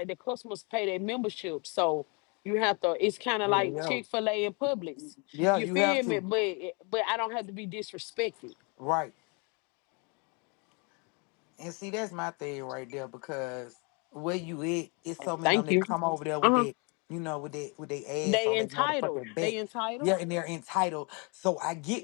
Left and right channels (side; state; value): right; quieter; 32.8 dB